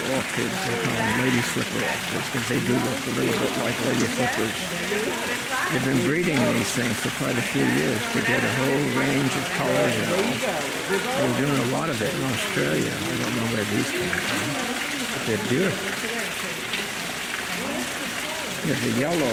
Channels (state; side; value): identical; both; correlation 1.00